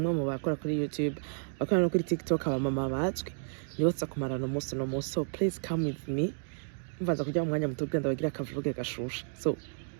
mu bakora kuri YouTube, bakora no kuri TikTok, abamama bazwi. Nibatsa kumarana umunsi no munsi. So please come with me. Mvaza kujya mu mwanya muto genda bagira akavuge gashusha. So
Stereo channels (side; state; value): left; silent; digital silence